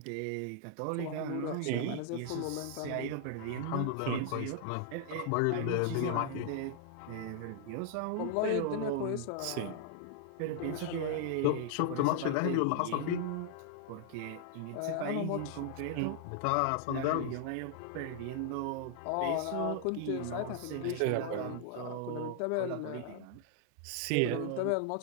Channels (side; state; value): both; different; correlation 0.00